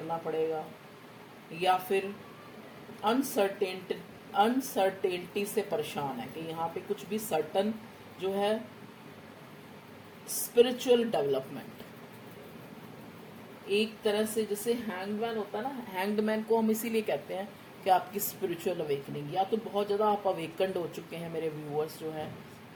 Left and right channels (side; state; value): both; identical; correlation 1.00